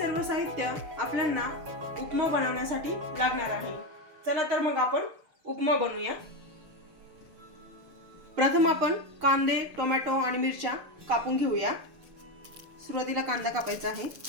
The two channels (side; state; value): left; late; 6.7 ms